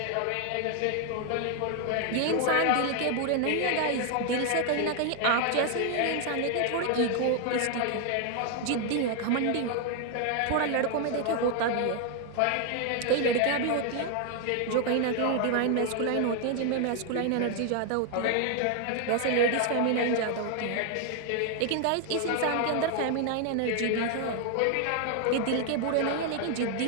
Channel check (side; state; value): both; different; correlation 0.00